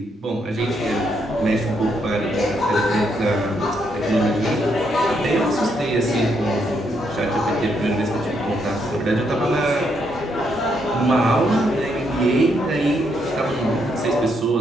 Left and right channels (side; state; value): both; normal; correlation 0.76